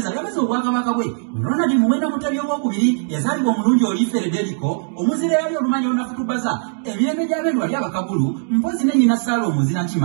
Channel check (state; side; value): silent; left; 66 dB below the other